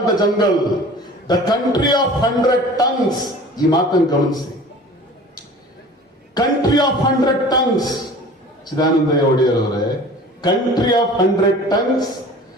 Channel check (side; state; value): both; normal; correlation 0.43